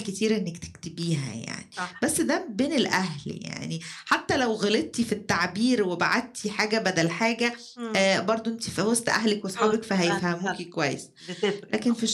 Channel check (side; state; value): both; identical; correlation 1.00